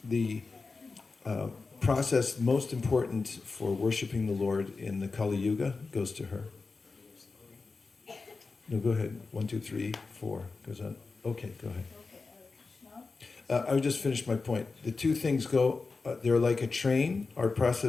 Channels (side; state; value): right; quieter; 4.1 dB